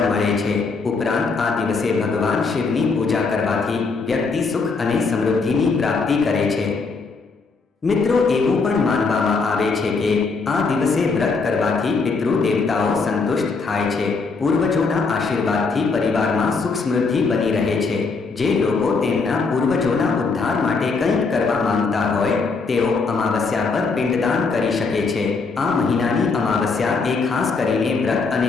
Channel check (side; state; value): right; quieter; 4.4 dB